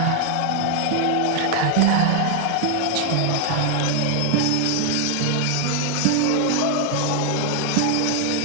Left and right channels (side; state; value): both; different; correlation 0.01